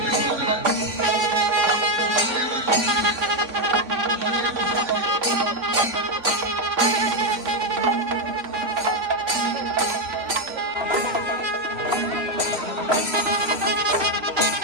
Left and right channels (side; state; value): left; late; 3.7 ms